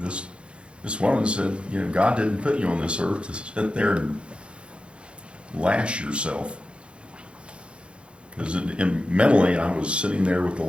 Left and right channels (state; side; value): late; left; 0.057 ms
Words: This woman said, you know, God didn't put you on this earth to sit there and lash yourself. Because mentally, I was sitting there with the